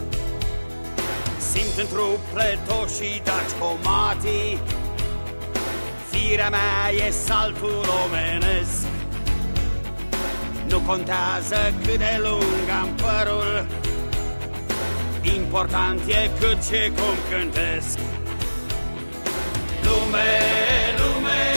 Simt în trup pletoșii daci comatii, firea mea e saltul omenesc. Nu contează cât de lung am părul, important e cât și cum cântesc. Lume, lume,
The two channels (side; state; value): both; inverted; correlation -1.00